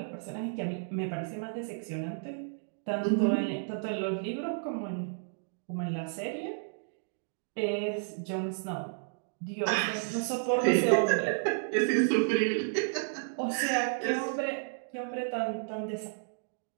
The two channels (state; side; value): silent; left; digital silence